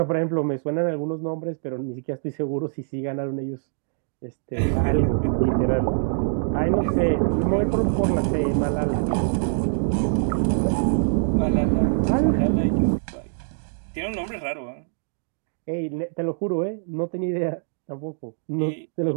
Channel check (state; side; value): silent; left; digital silence